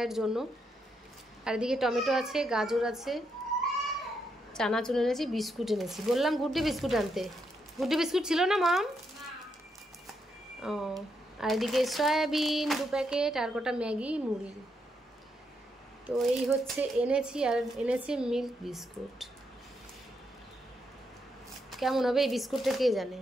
জন্য। আর এদিকে টমেটো আছে, গাজর আছে, চানাচুর এনেছি, বিস্কুট এনেছি। বললাম গুড্ডি বিস্কুট আনতে, গুড্ডি বিস্কুট ছিল না মাম? ও, আর এদিকে সয়াবিন 2 প্যাকেট, আর কটা ম্যাগি, মুড়ি। তো এই হচ্ছে এনেছি। আর এনেছি মিল্ক বিস্কুট। কেমন হবে এই বিস্কুটটা কে জানে,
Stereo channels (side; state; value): both; normal; correlation 0.80